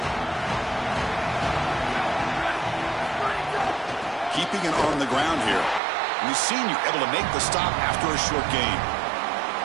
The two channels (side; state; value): left; drops out; at 5.8 s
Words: Keeping it on the ground here. We've seen you able to make the stop after a short gain.